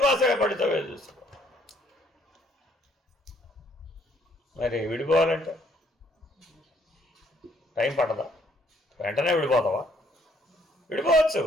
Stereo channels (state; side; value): normal; both; correlation 0.66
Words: పడితే చూసుకో. మరి విడిపోవాలంటే టైం పట్టదా? వెంటనే విడిపోతావా? విడిపోవచ్చు.